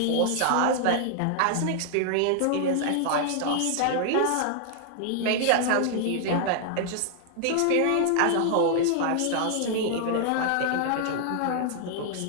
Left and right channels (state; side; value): different; both; correlation 0.00